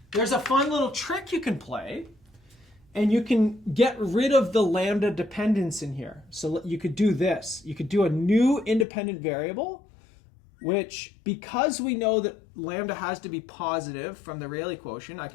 There's a fun little trick you can play, and you can get rid of the lambda dependence in here. So you could do this. You could do a new independent variable, which, because we know that lambda has to be positive from the Rayleigh quotient, I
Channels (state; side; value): drops out; right; at 8.8 s